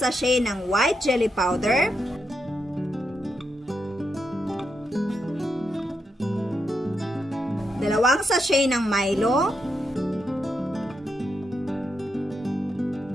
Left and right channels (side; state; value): both; normal; correlation 0.84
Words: ng white jelly powder. Dalawang sachet ng Milo,